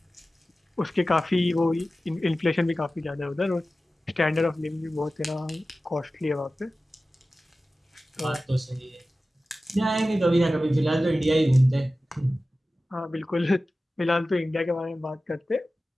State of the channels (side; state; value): both; normal; correlation 0.95